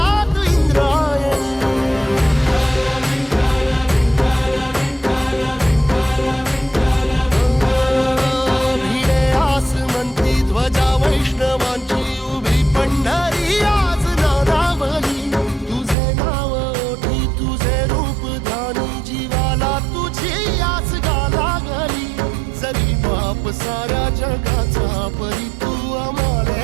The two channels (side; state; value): left; drops out; at 16.0 s